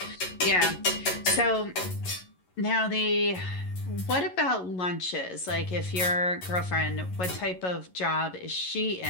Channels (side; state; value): right; late; 11 ms